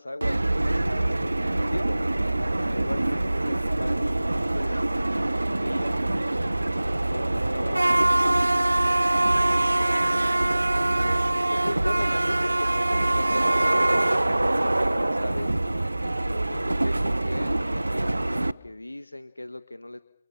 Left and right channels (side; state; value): both; inverted; correlation -0.99